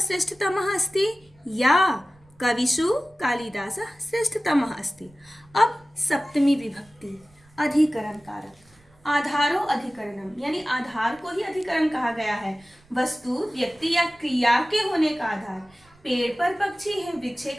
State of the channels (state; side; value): noise; right; rumble, 30 dB below the sound